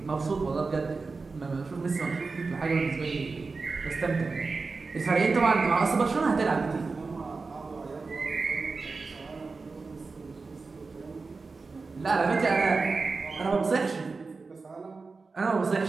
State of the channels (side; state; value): left; quieter; 4.2 dB